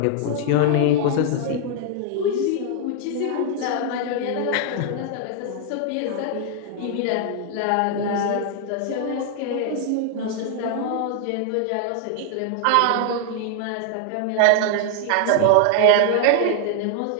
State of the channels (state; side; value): different; both; correlation 0.00